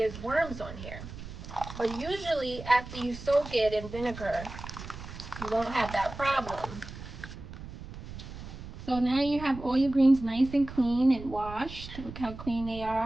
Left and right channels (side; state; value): right; noise; rumble, 12 dB below the sound